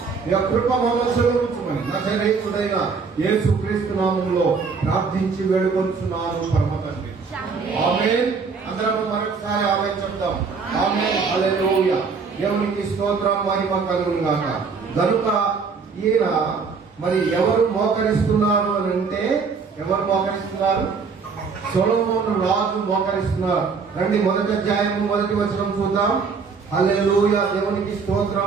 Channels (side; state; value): left; quieter; 5.2 dB